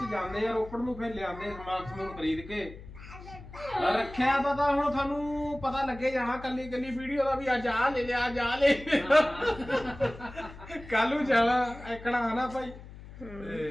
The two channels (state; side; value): noise; left; hum, 16 dB below the sound